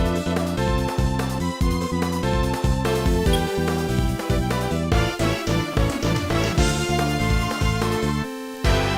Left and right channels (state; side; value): identical; both; correlation 1.00